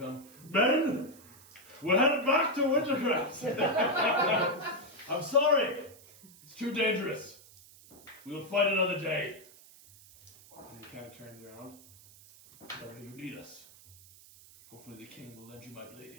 done. Men! We're headed back to Wintercrest! I'm sorry! It's too dangerous. We'll fight another day. And he kind of turns around. Whenever you need us. Hopefully the king will lend you my blade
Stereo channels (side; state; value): right; noise; hiss, 22 dB below the sound